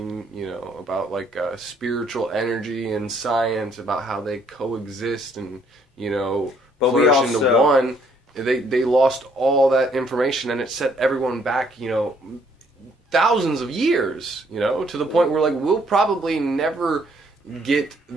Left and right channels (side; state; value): both; normal; correlation 0.66